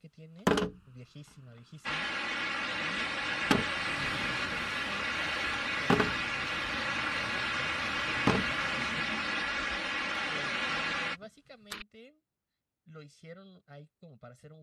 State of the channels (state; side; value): identical; both; correlation 1.00